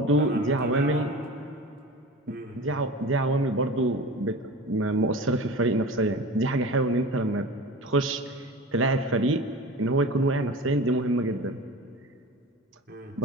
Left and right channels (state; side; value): normal; both; correlation 0.34